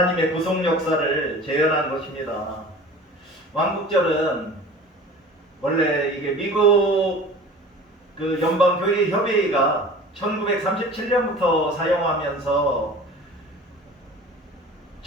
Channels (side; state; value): both; normal; correlation 0.41